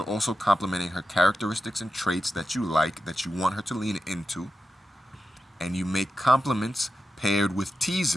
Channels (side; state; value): both; normal; correlation 0.90